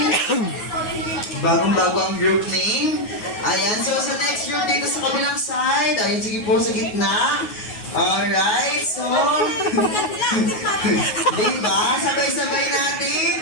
Bagong-bago ang group name. Ayan, so sa next group dito sa kabilang side. Ayun, sige po sa gitna. Alright, so... diba? Sabay-sabay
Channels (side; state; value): right; late; 9.4 ms